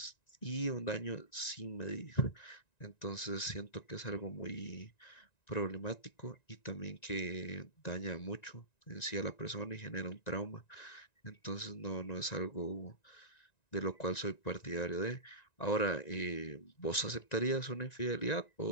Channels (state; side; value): late; right; 1.9 ms